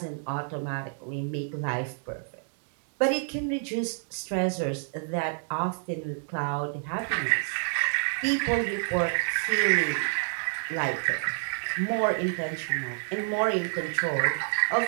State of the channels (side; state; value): left; silent; digital silence